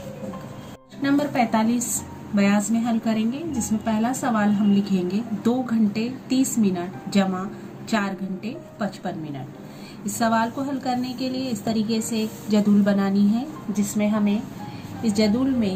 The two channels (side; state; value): both; identical; correlation 1.00